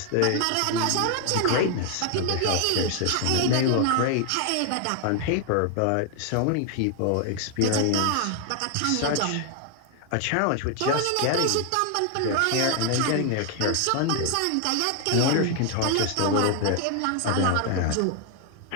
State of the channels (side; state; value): both; different; correlation 0.00